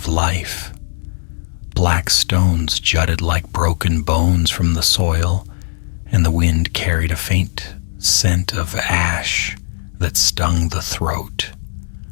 life. Black stones jutted like broken bones from the soil, and the wind carried a faint scent of ash that stung the throat.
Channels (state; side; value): silent; right; 66 dB below the other